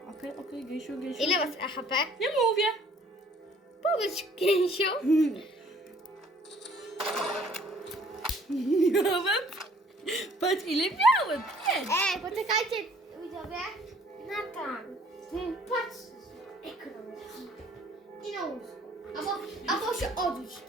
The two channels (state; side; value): normal; both; correlation 0.57